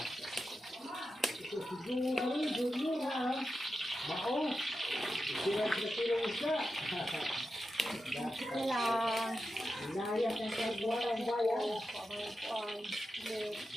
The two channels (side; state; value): both; normal; correlation 0.90